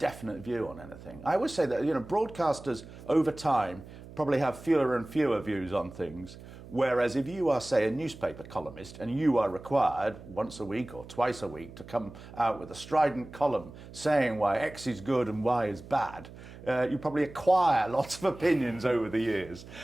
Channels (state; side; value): noise; right; hum, 16 dB below the sound